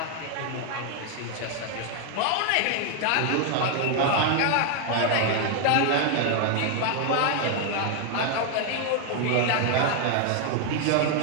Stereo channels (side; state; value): both; different; correlation 0.00